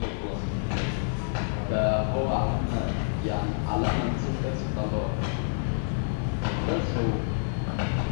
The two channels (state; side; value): silent; right; digital silence